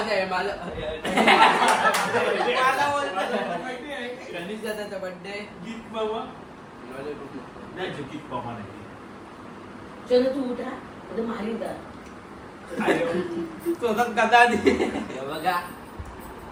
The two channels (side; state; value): both; identical; correlation 1.00